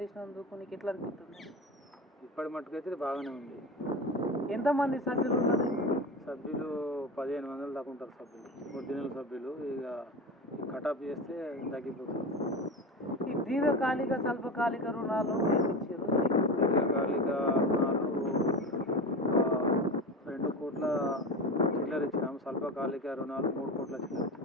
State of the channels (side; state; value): both; normal; correlation 0.26